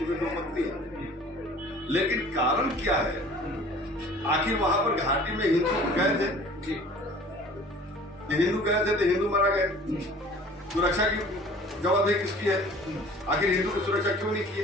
में तो मत नहीं है। लेकिन कारण क्या है, आखिर वहां पर घाटी में हिंदू गए थे, हिंदू गए थे तो हिंदू मारा गए, सुरक्षा की जवाबदेही किसकी है? आखिर हिंदू की सुरक्षा क्यों नहीं की?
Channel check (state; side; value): normal; both; correlation 0.48